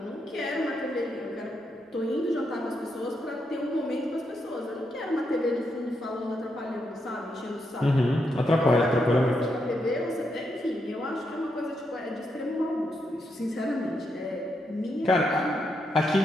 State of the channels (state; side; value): normal; both; correlation 0.81